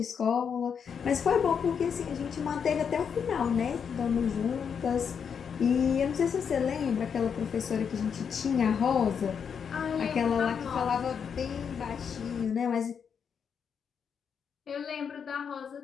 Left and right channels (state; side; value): quieter; right; 7.0 dB